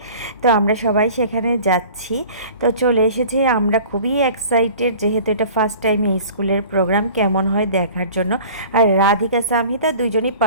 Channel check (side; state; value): both; inverted; correlation -0.44